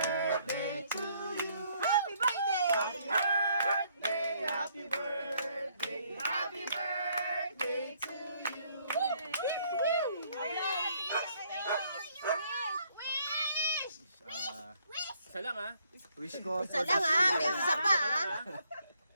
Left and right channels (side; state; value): both; inverted; correlation -0.68